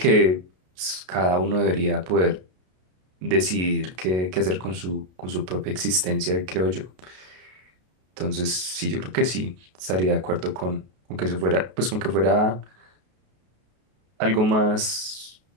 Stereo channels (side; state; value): left; late; 33 ms